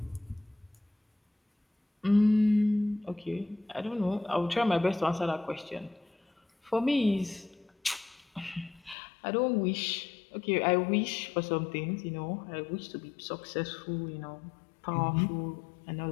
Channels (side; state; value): right; drops out; at 9.0 s